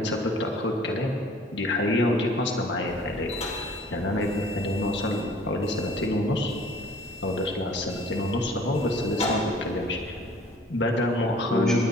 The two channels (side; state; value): both; normal; correlation 0.52